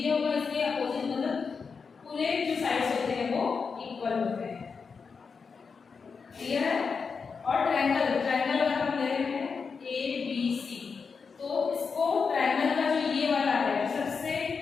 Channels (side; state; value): right; quieter; 5.4 dB